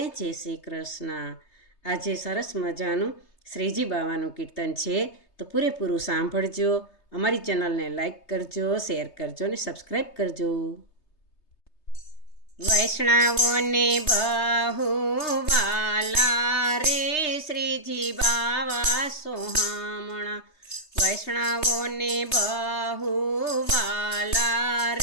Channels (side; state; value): right; late; 3.3 ms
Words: જય શ્રી કૃષ્ણ. આજે સરસ મજાનું શ્રીજી બાવાનું કીર્તન છે, તો પૂરેપૂરું સાંભળજો. અમારી ચેનલને લાઈક કરજો, શેર કરજો અને સબસ્ક્રાઈબ કરજો. વૈષ્ણવોને બહુ વાલા રે શ્રીજી બાવા સોહામણા. વૈષ્ણવોને બહુ વાલા